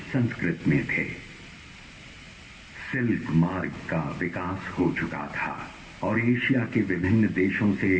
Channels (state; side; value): identical; both; correlation 1.00